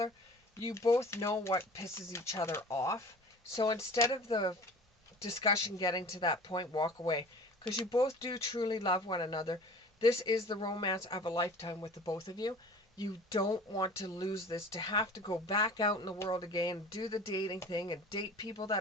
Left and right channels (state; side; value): normal; both; correlation 0.42